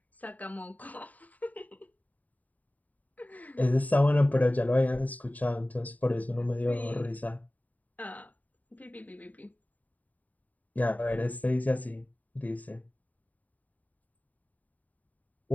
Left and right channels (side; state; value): right; late; 0.074 ms